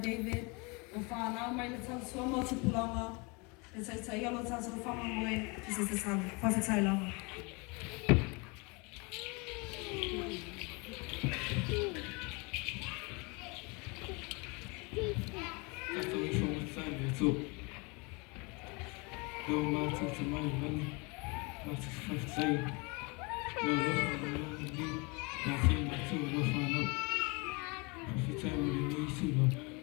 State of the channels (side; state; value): right; quieter; 29.4 dB